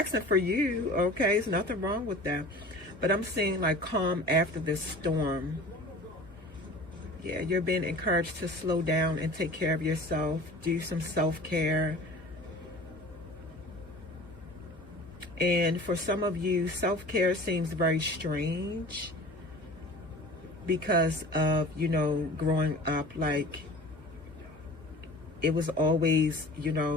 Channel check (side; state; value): both; normal; correlation 0.41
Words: for you, okay? There's nothing wrong with that. But I'm seeing like calm after this storm. Yeah, you're being encouraged to slow down and take care of yourself. Do some self-care. And for some of you, self-care seems very strange because of, growing up, like it was always,